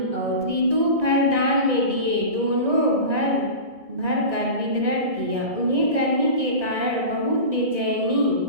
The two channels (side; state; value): left; late; 1.6 ms